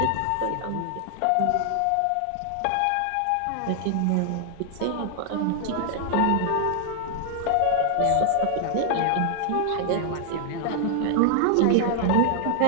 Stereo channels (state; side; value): different; both; correlation 0.00